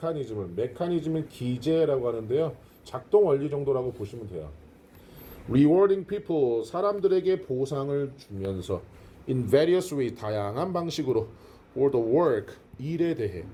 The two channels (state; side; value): identical; both; correlation 1.00